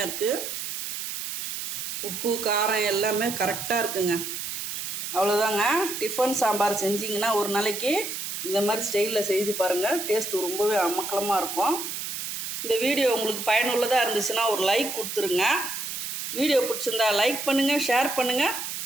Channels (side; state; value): right; noise; hiss, 5 dB below the sound